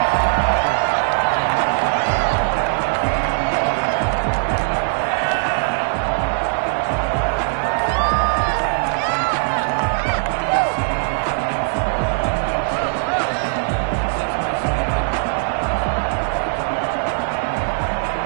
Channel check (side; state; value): left; silent; digital silence